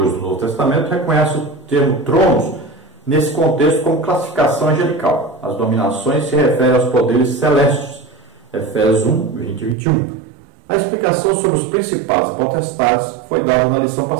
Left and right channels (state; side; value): drops out; left; at 9.8 s